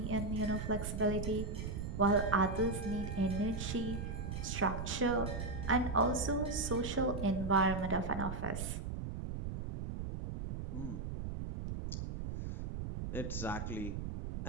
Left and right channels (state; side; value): noise; right; rumble, 5 dB below the sound